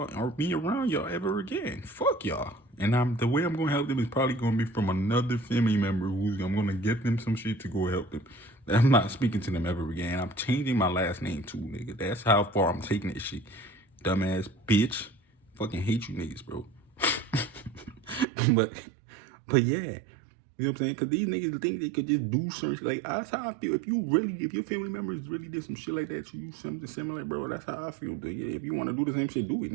or be around y'all ever again. Fuck y'all. And the way I'm gonna help them is probably gonna be from another family member who's I'm gonna get them some shit to go help them. I'm not speaking to them ever again. I'm changing my last name too, nigga. That's how far I'm taking this shit. Dumbass bitch. Fucking hate you niggas, bro. but yeah. You know what I'm saying? Because these niggas think they could just do certain shit. Like, that's how I feel. If your family members really did some shit like that, you something similar, bro, that's how I feel. If you want to do the same shit, do it,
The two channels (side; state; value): left; drops out; at 18.2 s